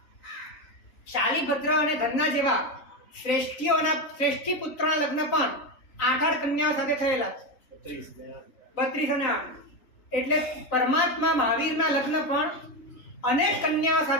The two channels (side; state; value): right; late; 3.9 ms